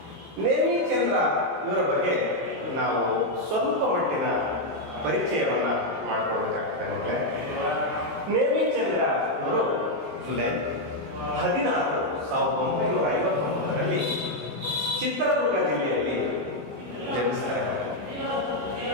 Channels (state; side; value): late; left; 19 ms